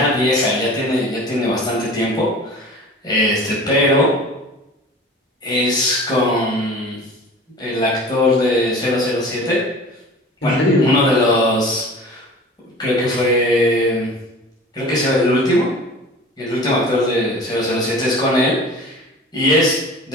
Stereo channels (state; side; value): normal; both; correlation 0.40